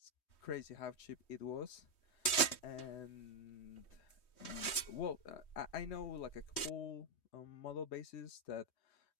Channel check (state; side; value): late; right; 3.2 ms